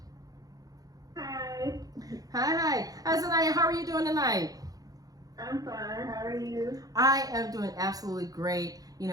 Hi. Hi. Hi, Zaniya. How are you doing tonight? I'm fine. How are you? I am doing absolutely great.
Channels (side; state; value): left; late; 0.18 ms